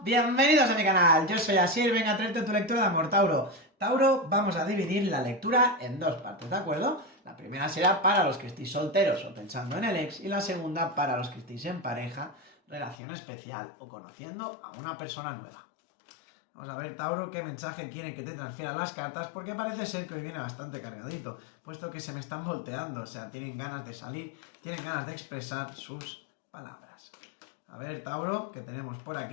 bienvenidos a mi canal, yo soy Asier, venga a traerte tu lectura de amor, Tauro. Tauro, vamos a dividir la lectura en dos partes, ¿de acuerdo? La primera será para los que estéis solteros o pensando en el ex y la segunda para los que estéis en pareja, relación especial o conociendo a una persona nueva. Vamos a ver, Tauro, qué mensaje quieren que te transfieran las cartas, porque parece ser que hoy viene bastante cargadito, puesto que se me están volteando, o sea, tienen ganas de salir, tienen ganas de expresar sus palabras. A ver, Tauro, que tenemos por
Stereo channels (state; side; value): drops out; right; at 13.0 s